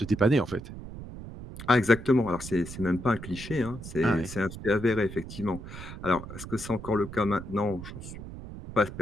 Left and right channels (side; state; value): right; noise; rumble, 11 dB below the sound